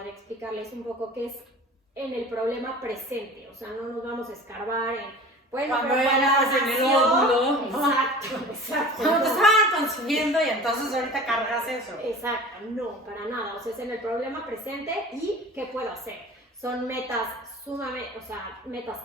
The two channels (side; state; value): both; normal; correlation 0.40